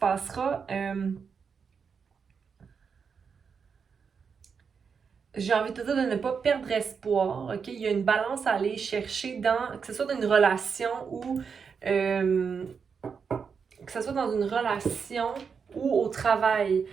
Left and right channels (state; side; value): quieter; left; 6.0 dB